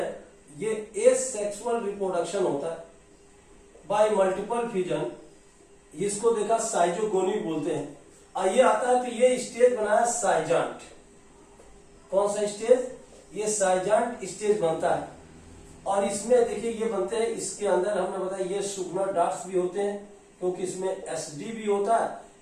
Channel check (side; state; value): both; identical; correlation 1.00